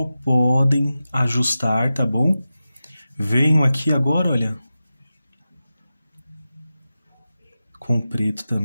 podem ajustar, tá bom? Venho aqui agora, olha, com preto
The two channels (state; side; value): inverted; both; correlation -0.93